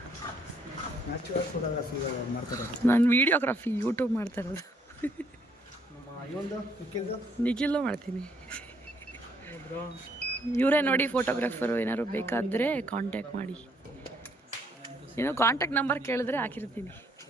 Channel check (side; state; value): both; normal; correlation 0.68